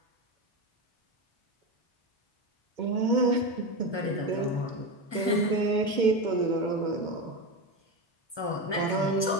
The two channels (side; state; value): right; late; 1.2 ms